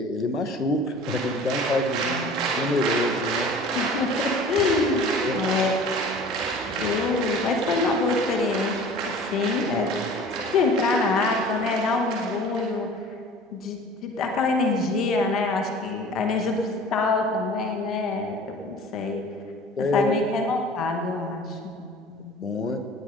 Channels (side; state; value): both; normal; correlation 0.44